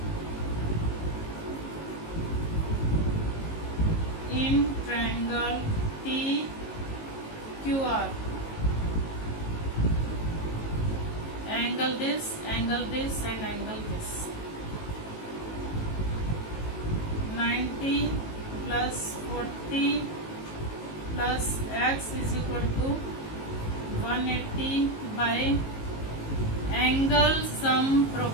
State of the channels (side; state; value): right; late; 18 ms